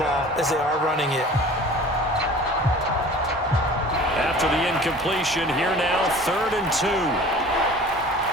as they are running it. After the incompletion, here now, 3rd and 2.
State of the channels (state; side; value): normal; both; correlation 0.44